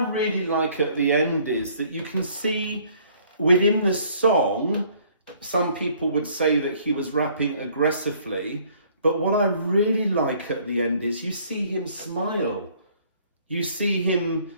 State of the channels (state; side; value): inverted; both; correlation -0.60